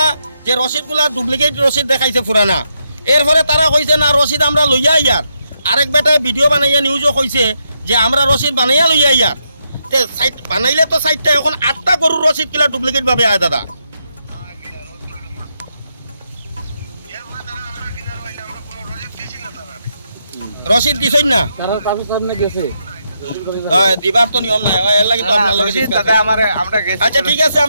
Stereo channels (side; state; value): both; inverted; correlation -0.81